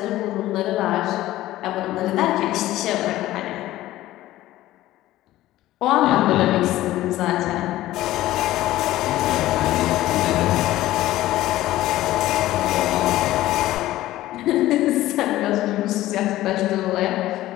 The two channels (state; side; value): quieter; right; 15.5 dB